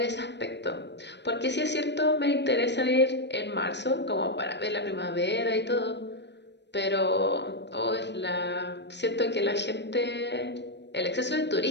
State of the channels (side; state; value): right; late; 0.50 ms